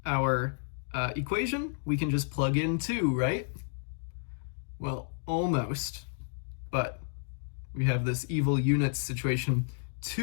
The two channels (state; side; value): silent; right; digital silence